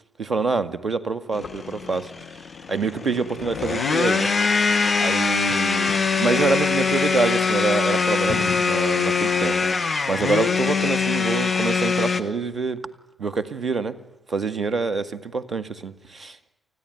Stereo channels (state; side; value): normal; both; correlation 0.77